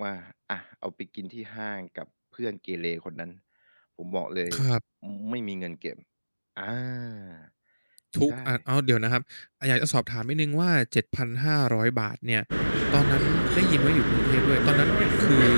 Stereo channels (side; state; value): both; inverted; correlation -1.00